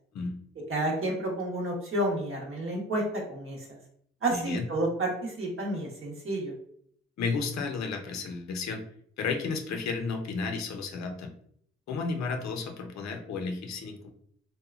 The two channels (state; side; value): normal; both; correlation 0.41